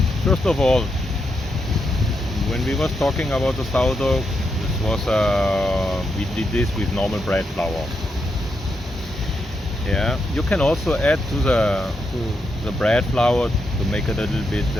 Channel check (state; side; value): normal; both; correlation 0.83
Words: First of all, when we was talking about the sourdough, this was we did this with normal bread flour. Yeah, you can also add to the bread flour to make it a little bit